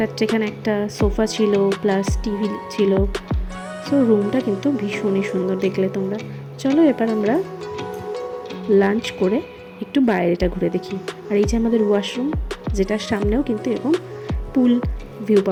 এখানে একটা সোফা ছিল প্লাস টিভি ছিল। সো রুমটা কিন্তু ভীষণই সুন্দর, দেখলে তোমরা। চলো এবার আমরা লাঞ্চ করে একটু বাইরেটা ঘুরে দেখি। আর এই যে আমাদের ওয়াশরুম, যেটার সামনেও কিন্তু এরকম পুল ভিউ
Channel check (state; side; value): identical; both; correlation 1.00